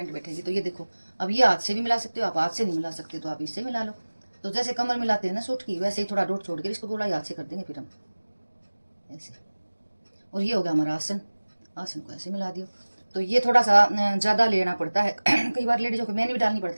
बैठेगी। तो ये देखो, अब ये हाथ से भी मिला सकते हो आप, हाथ से नहीं मिला सकते तो आप इससे मिला लो। तो जैसे कमर मिलाते हैं ना सूट की, वैसे ही थोड़ा डोट छोड़ के इसको गोलाई हाथ से कर देंगे फिर हम ऐसे। और ये हो गया हमारा आसन, आसन को ऐसे मिला दियो। तो ये थोड़ा सा ज़्यादा लेना पड़ता है कई बार लेडीज़ों को मैंने भी डालनी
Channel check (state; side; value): inverted; both; correlation -1.00